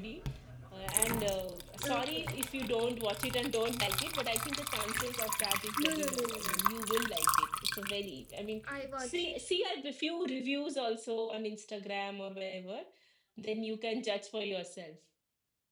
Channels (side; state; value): both; identical; correlation 1.00